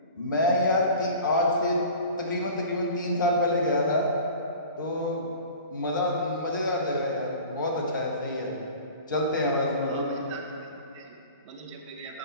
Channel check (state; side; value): inverted; both; correlation -0.41